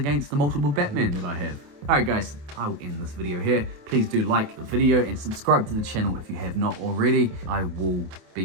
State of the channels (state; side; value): late; left; 28 ms